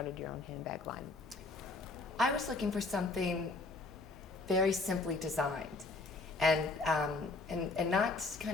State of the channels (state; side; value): quieter; right; 3.5 dB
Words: your own handbag line? I was looking for something very simply designed, and not